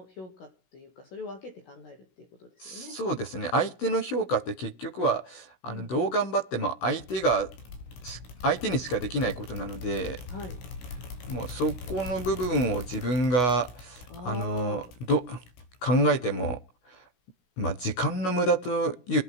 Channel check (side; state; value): right; late; 16 ms